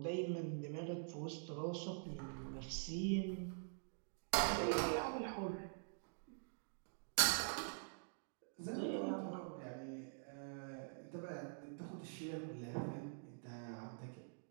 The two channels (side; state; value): left; silent; digital silence